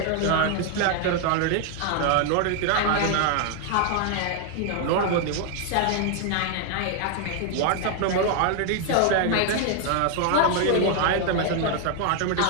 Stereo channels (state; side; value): different; both; correlation 0.00